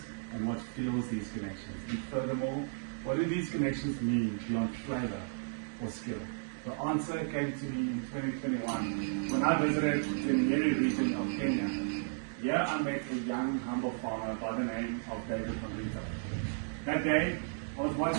and what fuels these connections, and furthermore, what do these connections mean beyond flavor or skill? The answer came to me in 2021 when I visited the Nyeri region of Kenya. Here I met a young, humble farmer by the name of David Mavita. That day, I was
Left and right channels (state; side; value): silent; left; digital silence